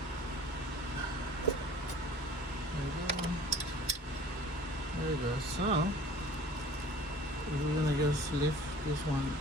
There you go. So we're gonna just lift this one,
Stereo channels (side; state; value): both; normal; correlation 0.46